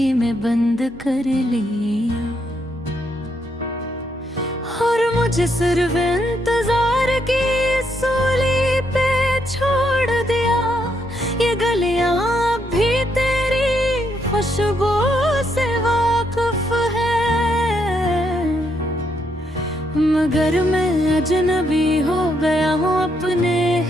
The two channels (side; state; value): both; normal; correlation 0.76